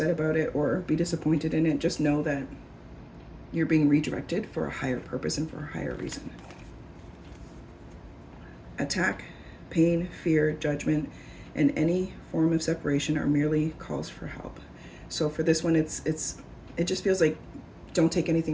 about it or be disappointed in it. Just know that you're being redirected for a higher purpose and for a higher reason. Attack, pain, fear, judgment, and any form of separation are merely calls for help. So for this one, it just feels like, don't take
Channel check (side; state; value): both; identical; correlation 1.00